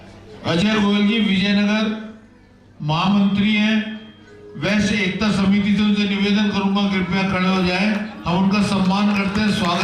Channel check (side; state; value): both; identical; correlation 1.00